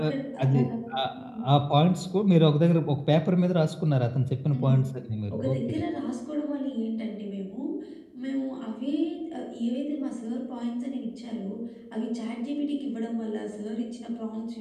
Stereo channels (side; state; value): both; identical; correlation 1.00